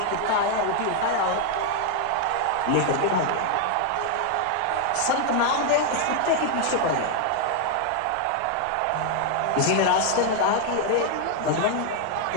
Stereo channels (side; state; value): both; different; correlation 0.00